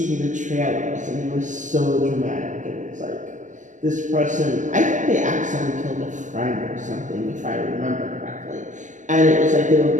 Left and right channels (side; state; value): left; late; 0.36 ms